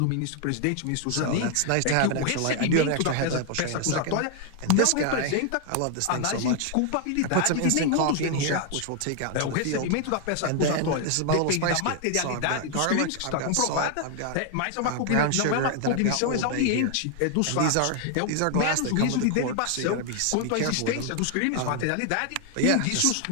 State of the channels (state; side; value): different; both; correlation 0.00